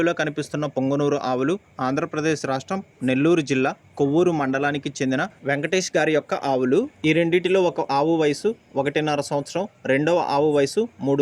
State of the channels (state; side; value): identical; both; correlation 1.00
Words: కనిపిస్తున్న పొంగనూరు ఆవులు ఆంధ్రప్రదేశ్ రాష్ట్రం నెల్లూరు జిల్లా కొవ్వూరు మండలానికి చెందిన వెంకటేష్ గారి యొక్క ఆవులు. ఈ రెండిటిలో ఒక ఆవు వయసు 1.5 సంవత్సరం, రెండవ ఆవు వయసు